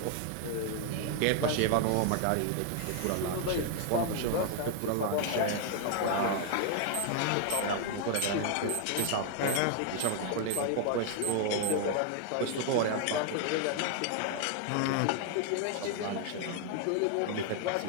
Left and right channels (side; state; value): both; different; correlation 0.00